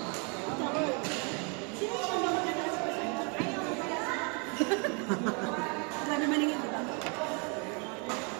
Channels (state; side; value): quieter; left; 35.2 dB